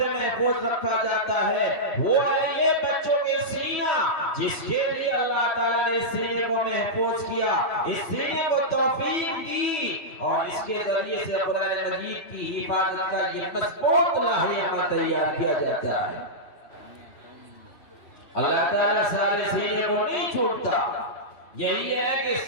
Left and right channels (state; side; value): late; right; 3.1 ms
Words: محفوظ رکھا جاتا ہے. وہ یہ بچوں کے سینہ جس کے لیے اللہ تعالیٰ نے اس سینے کو محفوظ کیا، اس سینے کو توفیق دی اور اس کے ذریعے سے قرآن مجید کی حفاظت کا یہ مضبوط لاحہ تیار کیا جاتا ہے. اللہ تعالیٰ سارے سینے کو نہیں چھوڑتا. یہی ہے کہ